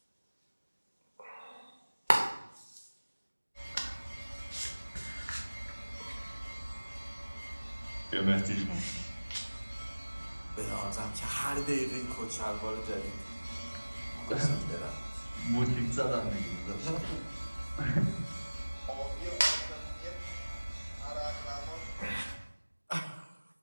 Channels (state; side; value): inverted; both; correlation -1.00